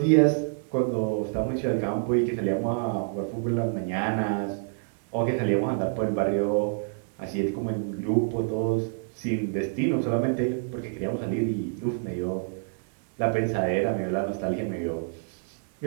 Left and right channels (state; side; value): silent; left; 60 dB below the other